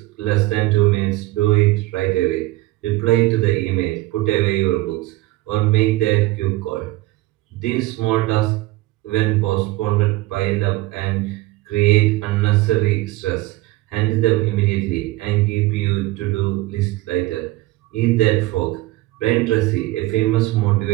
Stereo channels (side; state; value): left; quieter; 18.6 dB